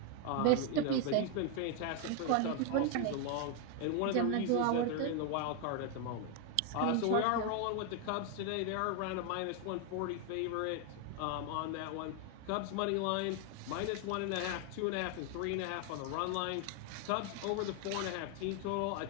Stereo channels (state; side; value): different; both; correlation 0.01